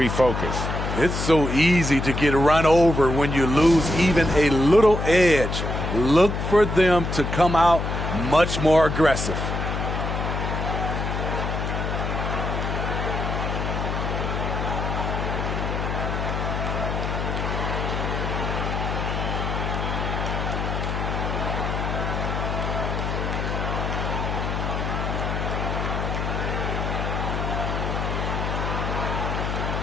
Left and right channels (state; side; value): noise; left; hum, 2 dB below the sound